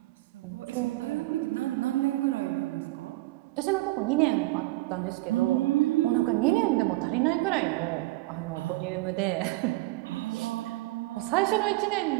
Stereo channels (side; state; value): left; quieter; 19.8 dB